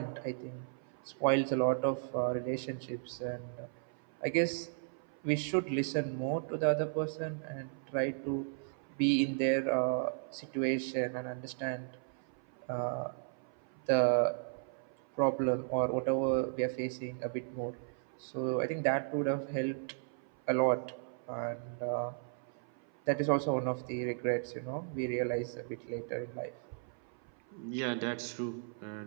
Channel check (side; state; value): left; silent; 54 dB below the other